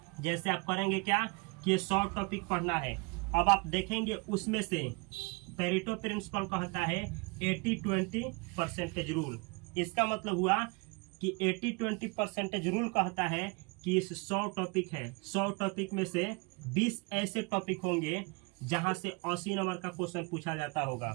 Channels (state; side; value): quieter; left; 29.7 dB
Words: आप करेंगे क्या कि ये 100 टॉपिक पढ़ना है, अब आप देखेंगे उसमें से पेरेटो प्रिंसिपल कहता है 80-20 परसेंटेज रूल। इसका मतलब हुआ कि 80-20 परसेंटेज रूल कहता है कि इस 100 टॉपिक है, 100 टॉपिक में से 20 ऐसे टॉपिक होंगे जहां से 80 नंबर का क्वेश्चन पूछा जाता